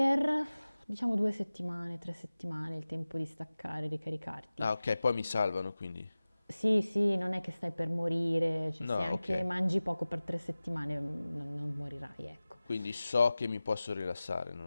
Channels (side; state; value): both; inverted; correlation -0.97